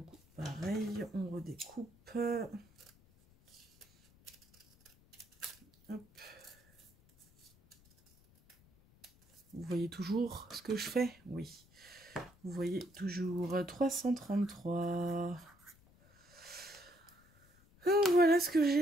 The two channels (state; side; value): noise; left; rumble, 28 dB below the sound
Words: pareil, on redécoupe. Hop. Vous voyez toujours ce que je fais? Oui. Vous voyez toujours 333. Donc voilà ce que